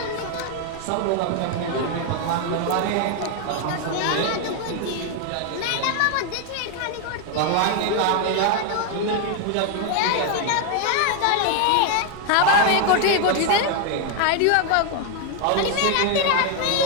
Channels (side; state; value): both; different; correlation 0.01